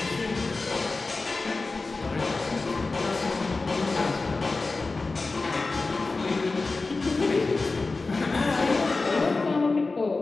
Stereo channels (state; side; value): quieter; right; 3.7 dB